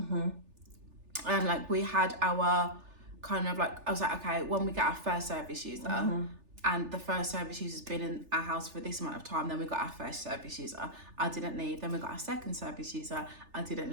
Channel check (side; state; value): left; late; 3.4 ms